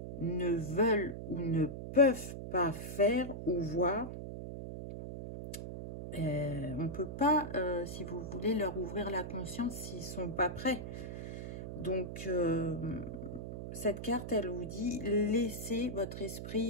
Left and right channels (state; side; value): noise; right; hum, 7 dB below the sound